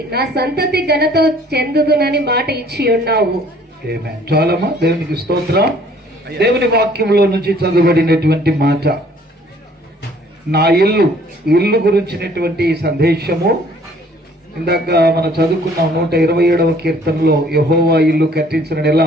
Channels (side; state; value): both; normal; correlation 0.57